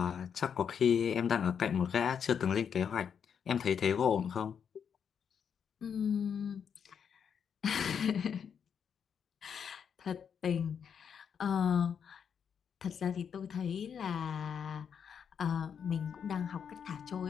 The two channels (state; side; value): quieter; right; 7.4 dB